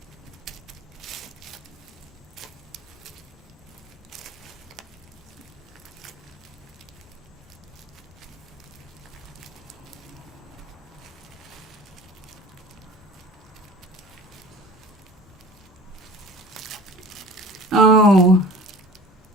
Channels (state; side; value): normal; both; correlation 0.42